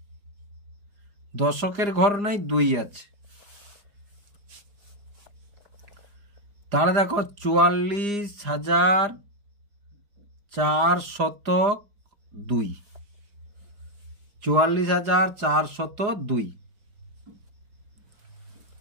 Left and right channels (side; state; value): left; late; 4.9 ms